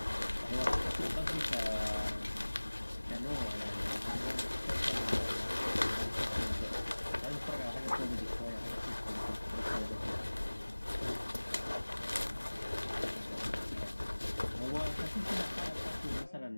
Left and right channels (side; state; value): both; inverted; correlation -1.00